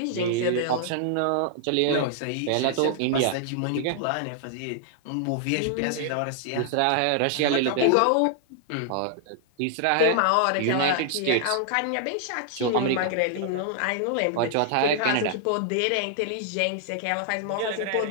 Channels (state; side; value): different; both; correlation -0.01